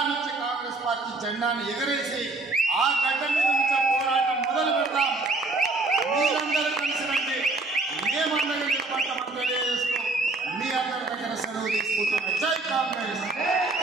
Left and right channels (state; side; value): quieter; left; 3.3 dB